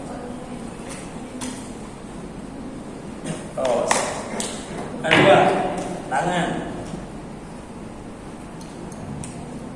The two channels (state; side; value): identical; both; correlation 1.00